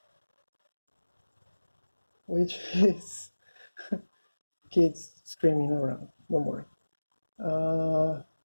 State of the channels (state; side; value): inverted; both; correlation -1.00